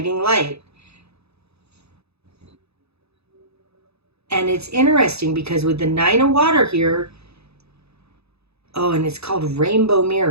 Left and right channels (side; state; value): left; late; 0.79 ms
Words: light. And it's interesting because with the Nine of Water here, and it's called Rainbow